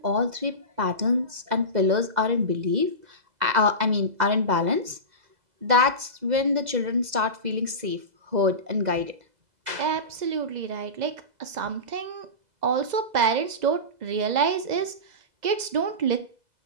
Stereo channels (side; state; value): left; late; 2.0 ms